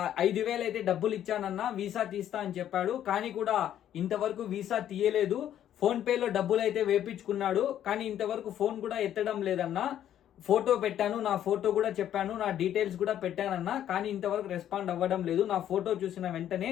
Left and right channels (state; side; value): quieter; right; 10.9 dB